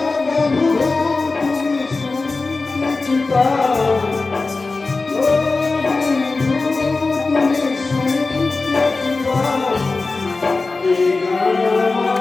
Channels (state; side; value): quieter; right; 3.7 dB